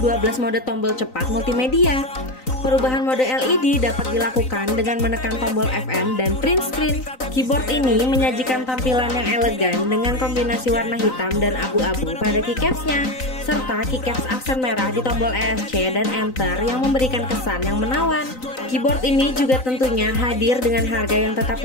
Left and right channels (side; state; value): right; late; 3.9 ms